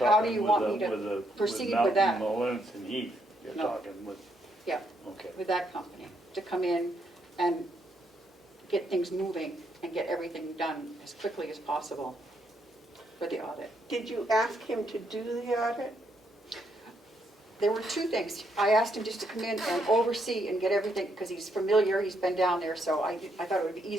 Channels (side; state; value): both; normal; correlation 0.75